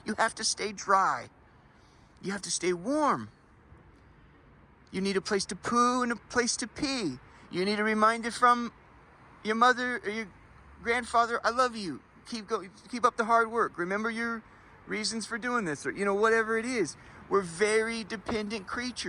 You have to stay dry. You have to stay warm. You need a place to poo and a place to pee. You need a reminder from your mother or your grandfather, I love you. Keep up the hard work. Remember your reasons for doing this, or whatever it is. We're very dependent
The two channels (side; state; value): both; identical; correlation 1.00